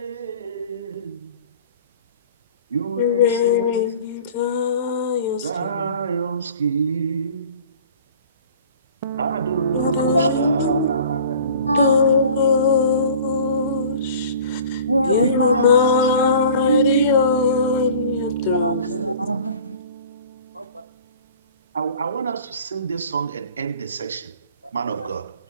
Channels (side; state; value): both; inverted; correlation -0.45